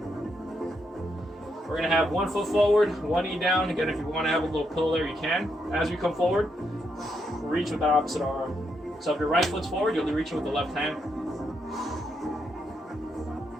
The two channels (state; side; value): normal; both; correlation 0.79